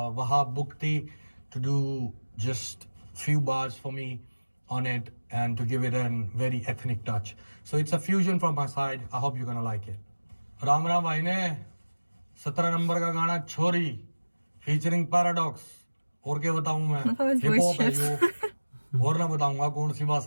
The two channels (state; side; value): inverted; both; correlation -1.00